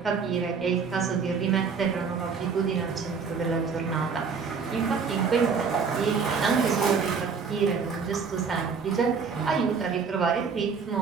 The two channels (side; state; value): left; quieter; 5.6 dB